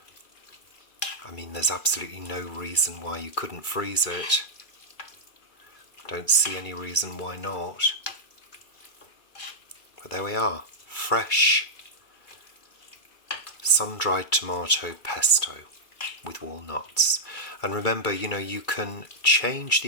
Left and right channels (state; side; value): late; right; 2.3 ms